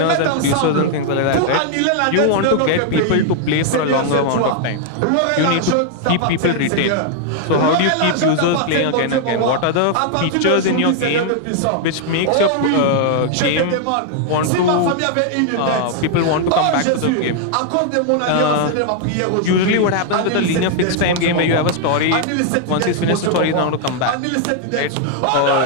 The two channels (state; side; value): different; both; correlation 0.00